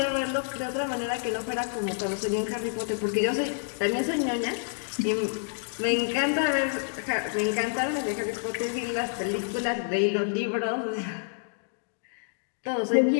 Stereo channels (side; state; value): right; silent; digital silence